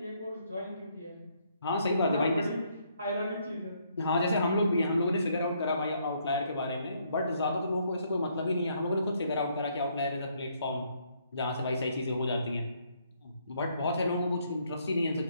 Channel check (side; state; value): both; inverted; correlation -0.70